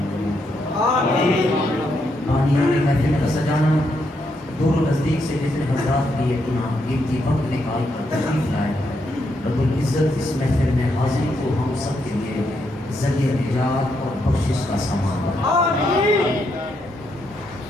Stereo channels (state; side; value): normal; both; correlation 0.79